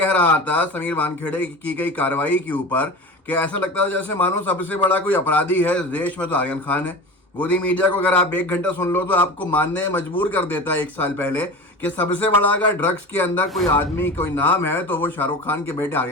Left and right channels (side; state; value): both; normal; correlation 0.31